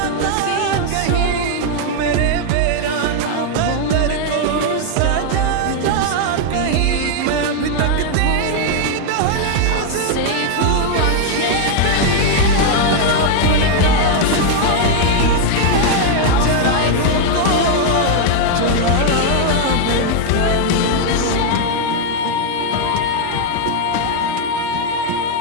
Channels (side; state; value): both; different; correlation 0.00